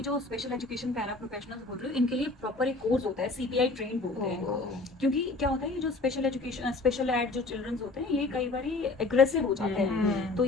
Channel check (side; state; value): right; quieter; 3.4 dB